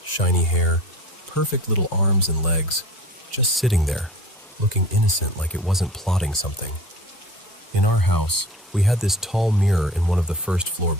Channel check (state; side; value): normal; both; correlation 0.40